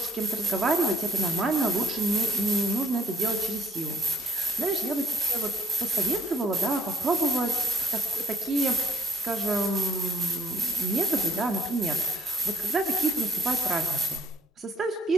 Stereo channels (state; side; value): normal; both; correlation 0.63